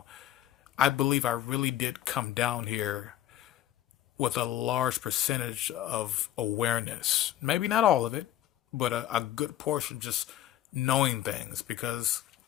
I believe I really did come down here with a large percentage of awareness. Maybe not all of it, but a good portion just knowing things. Because,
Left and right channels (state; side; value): quieter; right; 12.7 dB